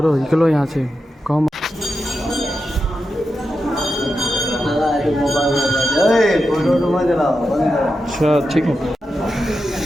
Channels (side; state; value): both; normal; correlation 0.89